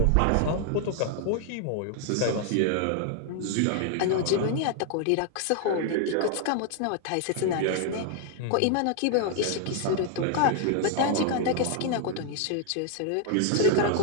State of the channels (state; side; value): different; both; correlation 0.00